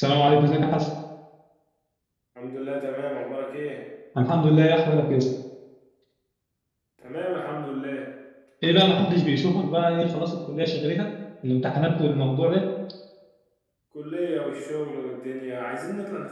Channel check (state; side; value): identical; both; correlation 1.00